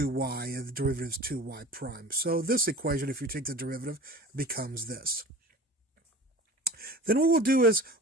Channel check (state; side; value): normal; both; correlation 0.38